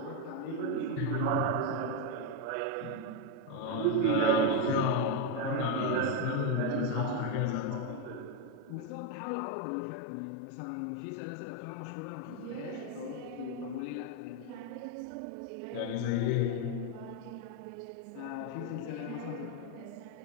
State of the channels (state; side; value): different; both; correlation 0.02